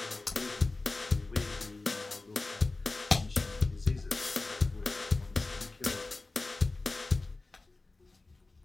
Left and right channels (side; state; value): right; quieter; 3.3 dB